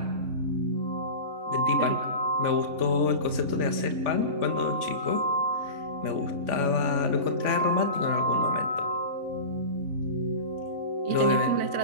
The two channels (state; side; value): late; left; 3.5 ms